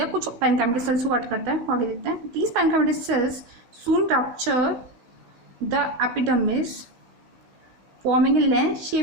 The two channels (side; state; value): left; late; 16 ms